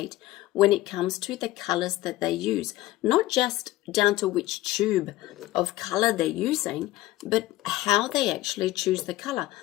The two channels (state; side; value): quieter; right; 16.6 dB